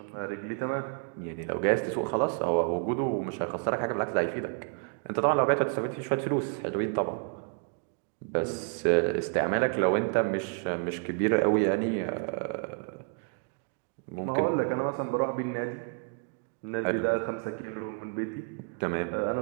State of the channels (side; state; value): left; quieter; 38.6 dB